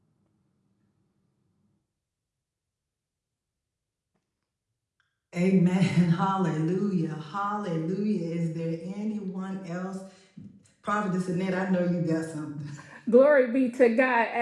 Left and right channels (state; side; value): identical; both; correlation 1.00